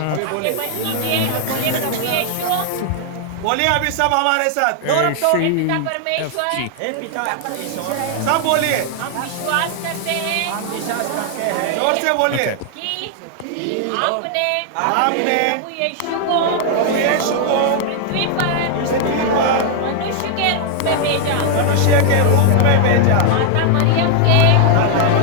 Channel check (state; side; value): different; both; correlation 0.00